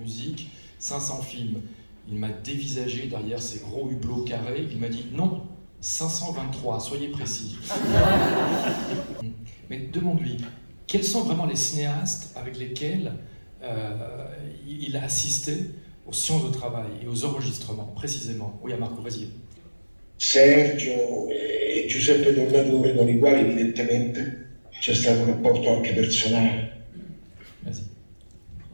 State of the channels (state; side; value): inverted; both; correlation -1.00